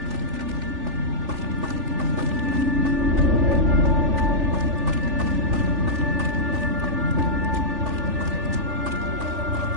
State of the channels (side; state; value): left; late; 3.4 ms